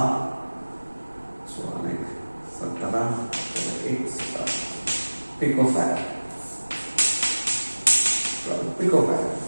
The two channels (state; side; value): inverted; both; correlation -1.00